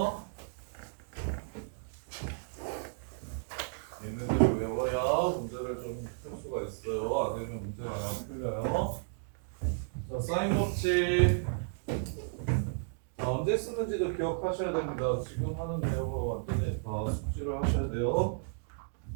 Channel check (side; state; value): left; silent; digital silence